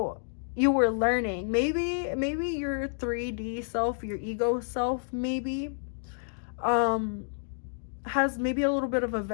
were learning. Maybe your 3D self, your ego self, maybe has maybe a little bit of a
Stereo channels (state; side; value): silent; right; digital silence